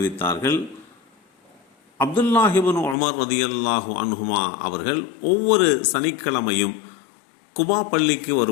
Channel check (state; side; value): drops out; right; at 3.0 s